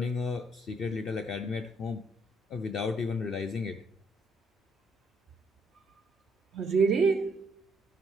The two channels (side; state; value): both; normal; correlation 0.70